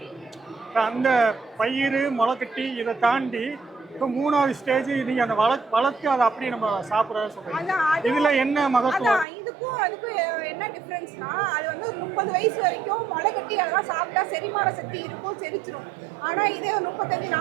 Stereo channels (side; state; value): left; drops out; at 9.2 s